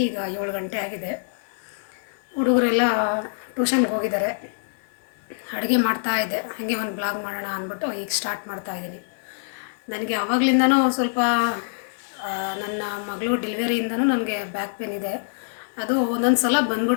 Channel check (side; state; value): right; silent; digital silence